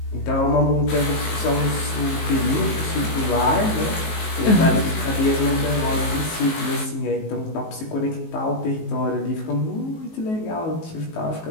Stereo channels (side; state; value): right; late; 19 ms